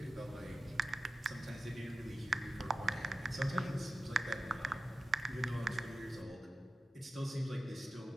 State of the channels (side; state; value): both; normal; correlation 0.92